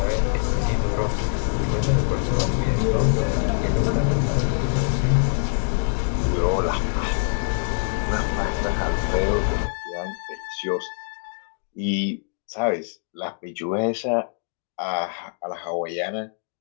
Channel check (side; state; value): right; silent; digital silence